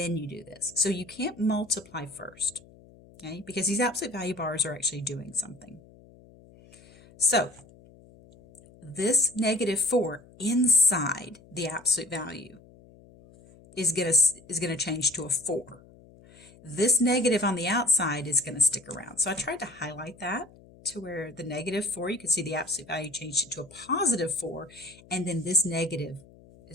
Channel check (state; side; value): noise; left; hum, 24 dB below the sound